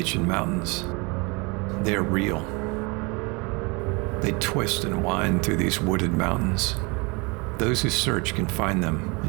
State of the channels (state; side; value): quieter; left; 28.6 dB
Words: Mountains. They are real. They twist and wind through these wooded mountains. Those who search can find them